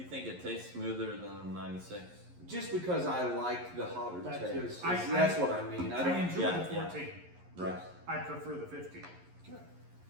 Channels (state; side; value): late; left; 11 ms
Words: think it tastes smoother than 96? just because I like the hotter That taste. is- That's what I mean. I I don't. enjoy yeah, the yeah. 14. Right. I prefer the 15. Okay.